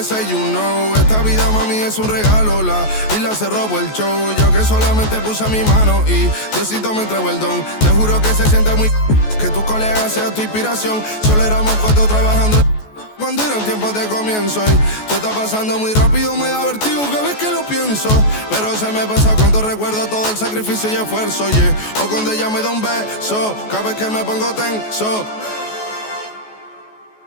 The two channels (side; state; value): right; late; 14 ms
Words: you know. Esta vida, mami, es un regalo. La isla se robó el show, yo que solamente puse mi mano y Diosito me entregó el don. Te juro que se siente muy... que tu colega sea tu inspiración. Solo éramos 4 trabajando cuando eran tiempos de comienzo y todo está pasando muy rápido, me da vertigo cada vez que lo pienso. Pero se me pasa cuando recuerdo todo el sacrificio y esfuerzo, yeah. O cuando ella me da un beso, cada vez que me pongo tenso.